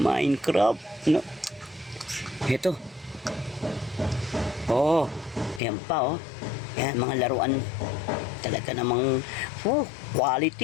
no? Ito, oh, yan pa, oh, yan, mga laruan, talaga namang,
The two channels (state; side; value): drops out; right; at 5.6 s